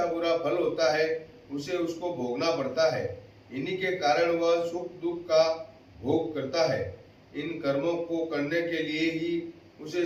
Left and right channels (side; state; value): both; identical; correlation 1.00